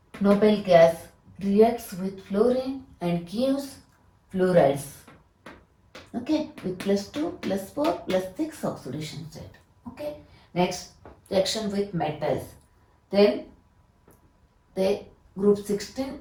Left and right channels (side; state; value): both; identical; correlation 1.00